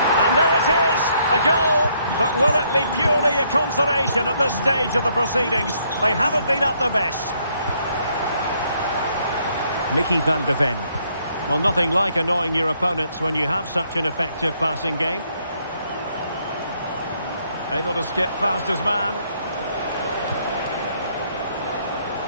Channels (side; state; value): both; inverted; correlation -0.70